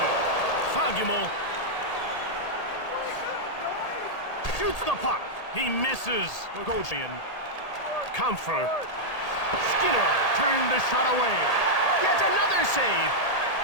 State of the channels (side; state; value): right; late; 1.8 ms